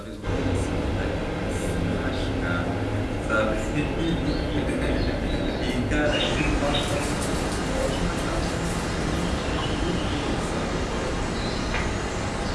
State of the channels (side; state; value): both; identical; correlation 1.00